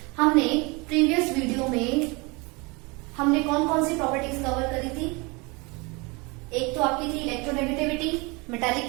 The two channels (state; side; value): quieter; left; 27.4 dB